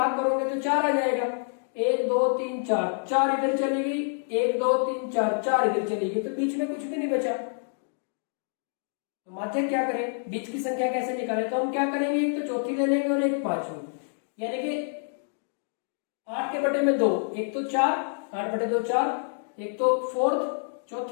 करोगे तो 4 आ जाएगा, 1 2 3 4, 4 इधर चली गई, 1 2 3 4, 4 इधर चली गई, तो बीच में कुछ भी नहीं बचा। तो माध्यक क्या करें, बीच की संख्या कैसे निकालें, तो हम क्या करेंगे, एक तो चौथी ले लेंगे और एक पांचवी, यानी कि 8 के बटे में 2, एक तो 4, 8 बटे 2 4, एक तो फोर्थ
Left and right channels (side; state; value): right; silent; digital silence